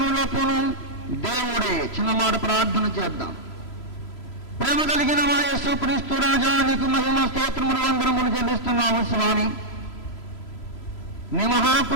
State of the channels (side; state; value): right; late; 3.0 ms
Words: దేవుడే. చిన్న మాట ప్రార్థన చేద్దాం. ప్రేమ కలిగిన మా యేసుక్రీస్తు రాజా, నీకు మహిమ స్తోత్రములు వందనములు చెల్లిస్తున్నాము స్వామి. నీ